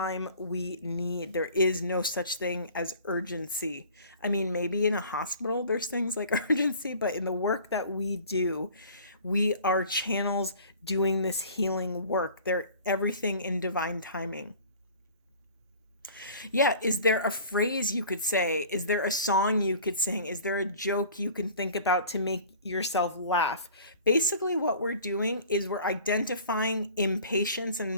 we need. There is no such thing as urgency. I mean, maybe in a hospital there's things like urgency, but in the work that we do, we are channels doing this healing work. They're everything in divine timing. Yeah, is there a phrase you could say? Is there a song you could sing? Is there a joke you can think about to make yourself laugh? Basically, what we're doing is we're identifying impatience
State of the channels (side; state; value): both; inverted; correlation -0.46